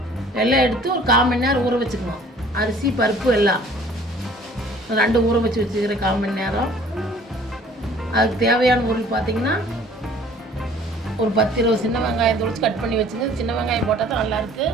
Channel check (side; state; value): both; normal; correlation 0.53